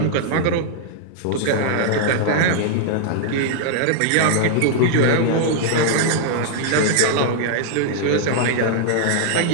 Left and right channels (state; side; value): different; both; correlation -0.01